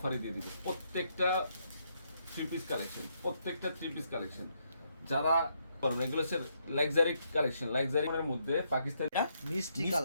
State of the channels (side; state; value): both; inverted; correlation -0.76